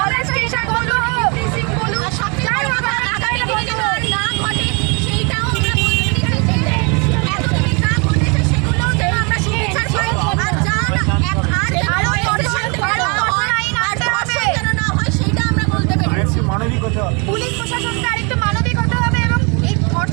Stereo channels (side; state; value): left; quieter; 32.5 dB